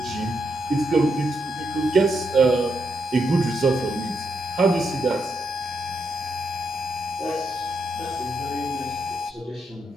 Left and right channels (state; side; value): normal; both; correlation 0.81